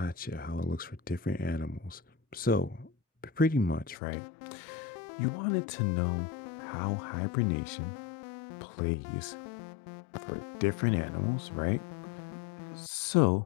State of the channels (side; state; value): right; drops out; at 4.0 s